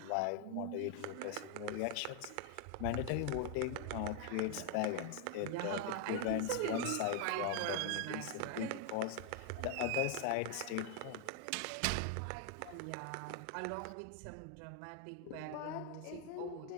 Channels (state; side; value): different; both; correlation 0.00